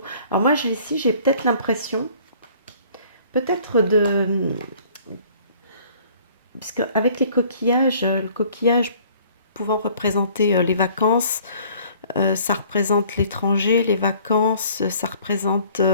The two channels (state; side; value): inverted; both; correlation -0.54